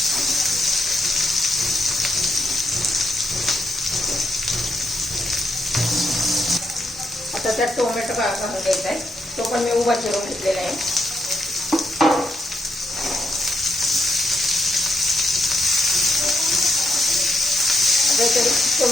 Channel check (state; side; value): normal; both; correlation 0.78